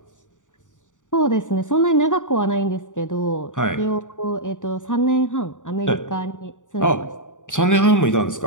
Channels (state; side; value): late; right; 0.86 ms